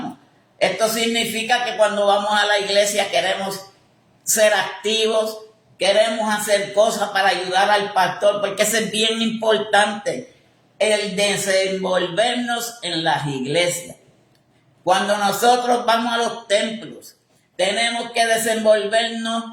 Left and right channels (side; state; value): both; identical; correlation 1.00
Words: Esto significa que cuando vamos a la iglesia queremos ser activos, queremos hacer cosas para ayudar al pastor, porque eso es bien importante, el desenvolvernos en las iglesias. Cuando nosotros vamos a los templos, tenemos que desenvolvernos